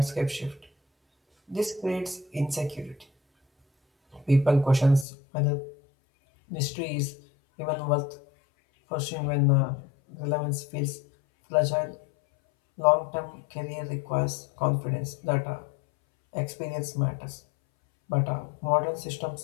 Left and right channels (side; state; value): right; drops out; at 5.1 s